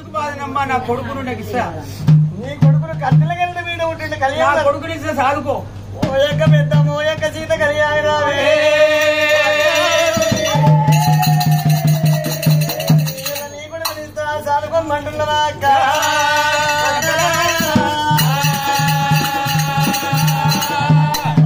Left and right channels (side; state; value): both; identical; correlation 1.00